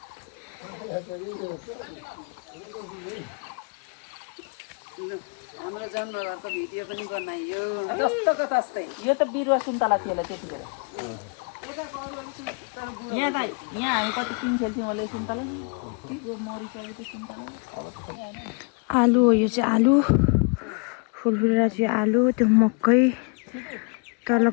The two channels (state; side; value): quieter; right; 36.3 dB